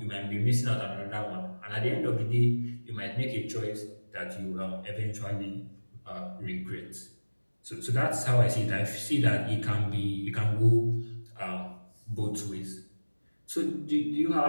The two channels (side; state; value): both; inverted; correlation -1.00